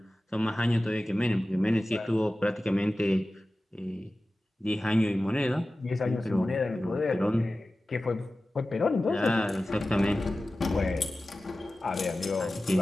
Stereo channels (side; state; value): both; normal; correlation 0.95